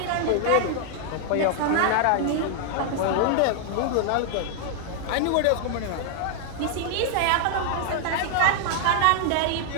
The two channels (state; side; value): different; both; correlation 0.00